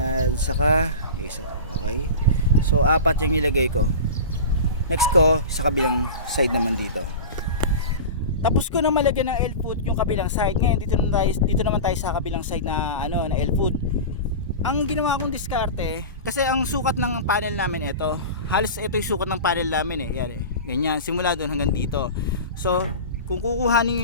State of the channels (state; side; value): inverted; both; correlation -0.30